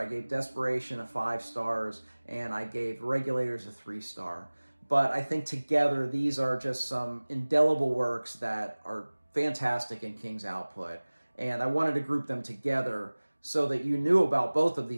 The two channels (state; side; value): inverted; both; correlation -1.00